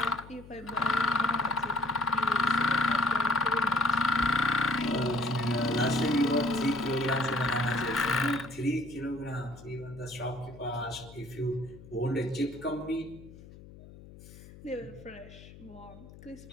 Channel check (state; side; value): noise; left; hum, 18 dB below the sound